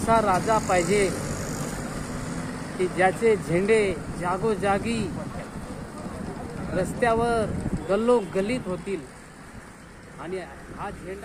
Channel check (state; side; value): identical; both; correlation 1.00